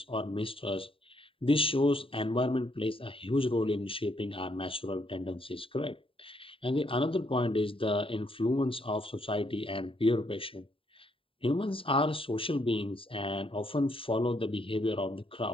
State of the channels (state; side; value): late; right; 0.26 ms